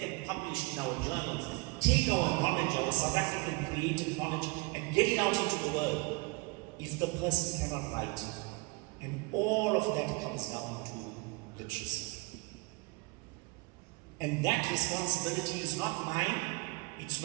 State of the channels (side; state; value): left; quieter; 27.3 dB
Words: them published in our journals, take our knowledge, our South African creative knowledge, and get it out into the world, if the person cannot write? And all of that comes down to literacy. And that responsibility is not mine, it's